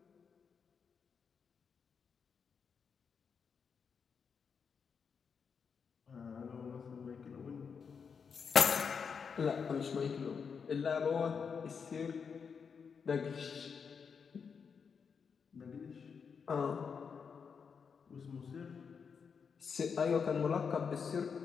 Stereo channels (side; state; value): right; quieter; 6.1 dB